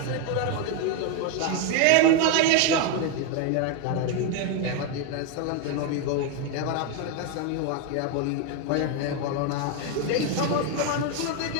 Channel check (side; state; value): both; different; correlation 0.01